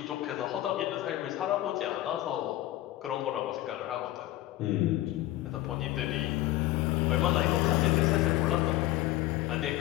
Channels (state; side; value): quieter; right; 15.7 dB